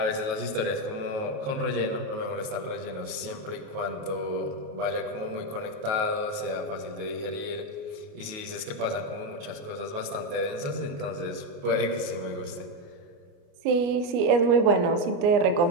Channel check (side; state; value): left; late; 28 ms